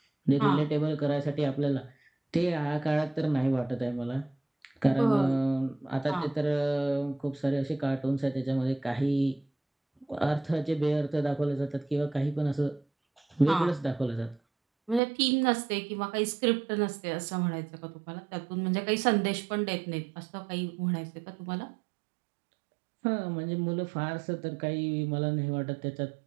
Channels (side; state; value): left; drops out; at 15.0 s